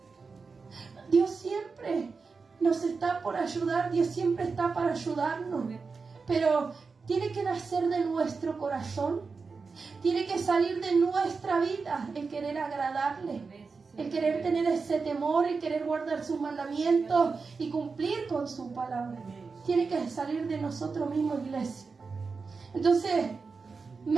Dios siempre nos está por ayudar, Dios siempre está para ayudarnos. Pero tiene que nacer de nuestro corazón, tiene que salir de nuestra vida el querer agradarle, el querer tener ese temor, el querer guardar sus mandamientos y cumplir con su palabra. Tiene que salir de nosotros mismos, iglesia. Entonces,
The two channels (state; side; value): quieter; left; 4.7 dB